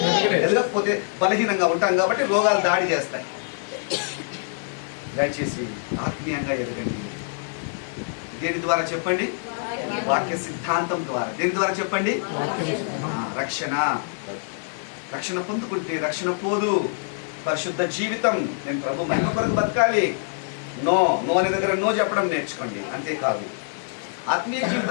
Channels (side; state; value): right; silent; digital silence